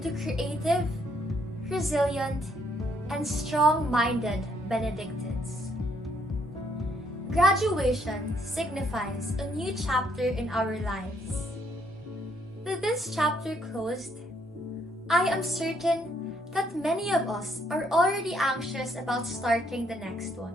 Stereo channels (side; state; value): both; normal; correlation 0.70